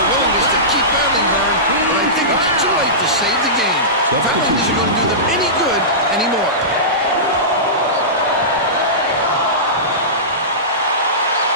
willingness to keep battling, Vern, but I think it's too late to save the game. Fouling isn't going to do them any good anymore.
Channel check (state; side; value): normal; both; correlation -0.20